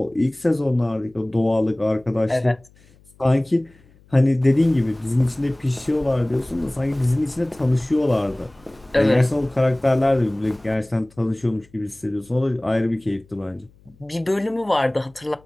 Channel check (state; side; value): noise; left; hum, 29 dB below the sound